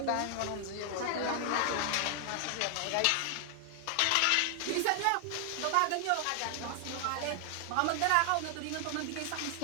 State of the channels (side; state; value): both; different; correlation 0.00